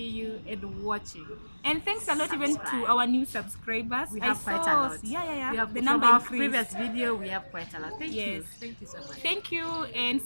you and watching. And thanks a lot even to our new subscribers. We have I quite saw, a lot. Yeah. We have, The from number our increased. previous video, we have quite a lot. Thank you. Yes. Thank you so much. Thank you, and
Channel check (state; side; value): inverted; both; correlation -1.00